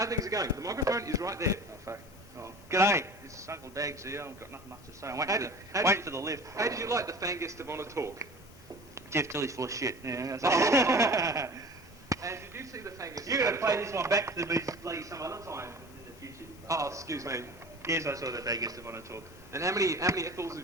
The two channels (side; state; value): both; normal; correlation 0.39